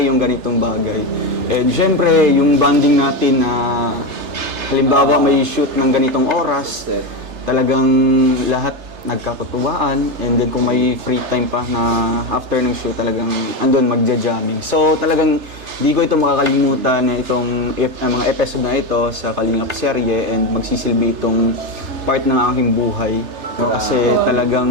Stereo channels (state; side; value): late; left; 3.3 ms